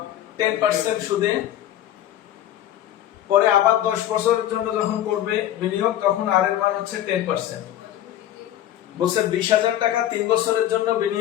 10% সুদে পরে আবার 10 বছরের জন্য যখন করবে বিনিয়োগ, তখন আর এর মান হচ্ছে 10%। বলছে 20,000 টাকা 3 বছরের জন্য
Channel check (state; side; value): quieter; right; 12.2 dB